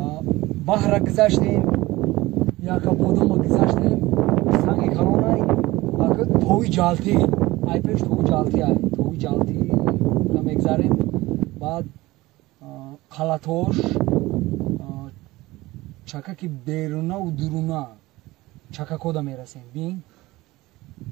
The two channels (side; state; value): left; quieter; 19.2 dB